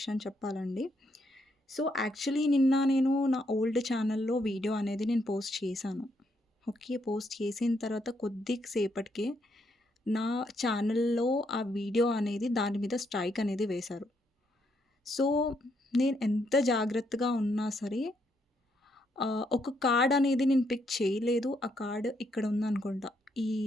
చెప్పాలండి. సో, యాక్చువల్లీ నిన్న నేను నా ఓల్డ్ ఛానల్‌లో వీడియో అనేది నేను పోస్ట్ చేశాను. ఓకే. పోస్ట్ చేసిన తర్వాత కొద్ది సేపటికే నా ఛానల్‌లో ఆ వీడియో అనేది దాని మీద స్ట్రైక్ అనేది వేశారు. సో, నేను ఎంత జాగ్రత్తగా ఉన్నా సరే ఒక కార్డ్ అనేది నేను పిక్ చేయలేదు. ఆ కార్డ్ ఇక్కడ ఉందనుకుంటా ఈ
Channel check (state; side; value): normal; both; correlation 0.76